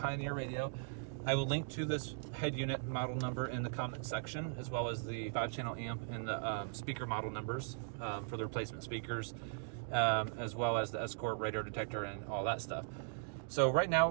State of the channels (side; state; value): left; silent; digital silence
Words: radio. I will link to this head unit model number in the comment section, as well as the 5-channel amp and the speaker model numbers for the replacement speakers, as well as the Escort radio detector and all that stuff. So right now